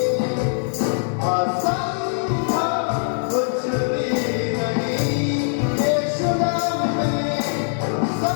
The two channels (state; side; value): silent; right; 56 dB below the other